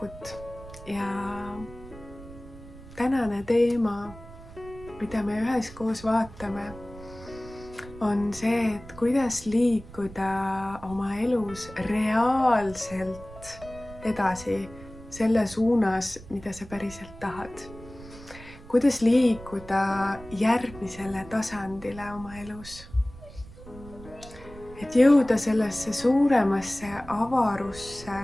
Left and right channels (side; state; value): right; noise; rumble, 17 dB below the sound